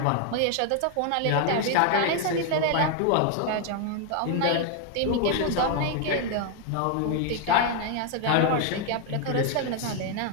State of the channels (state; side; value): different; both; correlation 0.00